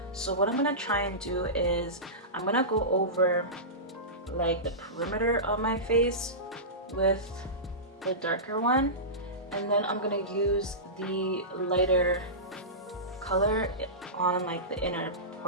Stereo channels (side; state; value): both; normal; correlation -0.19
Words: So what I'm gonna try and do is I'm gonna go over like the perimeter of my face with the darker one, and then I'm gonna use the lighter color on like the inner